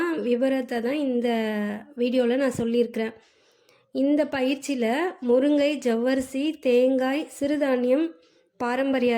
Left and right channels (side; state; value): both; identical; correlation 1.00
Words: விவரத்தை தான் இந்த வீடியோவில் நான் சொல்லியிருக்கிறேன். இந்த பயிற்சியில் முருங்கை, ஜவ்வரிசி, தேங்காய், சிறுதானியம், பாரம்பரிய